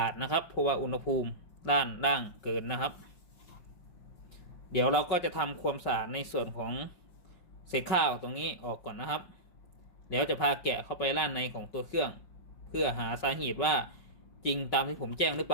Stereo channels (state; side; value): late; right; 5.6 ms